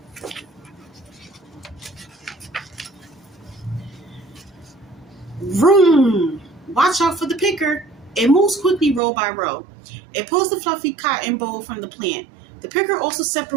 Vroom! Watch out for the picker. It moves quickly row by row. It pulls the fluffy cotton bowl from the plant. The picker also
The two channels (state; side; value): drops out; left; at 9.0 s